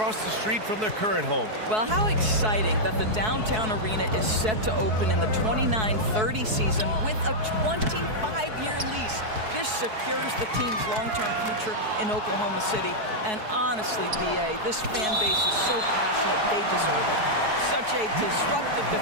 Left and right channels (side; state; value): left; late; 4.6 ms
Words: the street from their current home. Well, how exciting that the downtown arena is set to open in the 29-30 season with a 25-year lease. This secures the team's long-term future in Oklahoma City. And honestly, BA, this fan base is so passionate, they deserve it. Such a disruptive